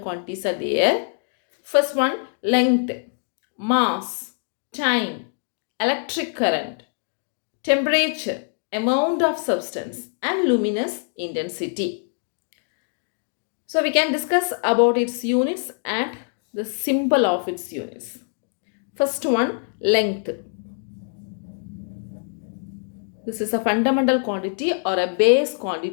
are there. First one, length, mass, time, electric current, temperature, amount of substance, and luminous intensity. So we can discuss about its units and the symbol of its units. First one, length. This is a fundamental quantity or a base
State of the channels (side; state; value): right; silent; digital silence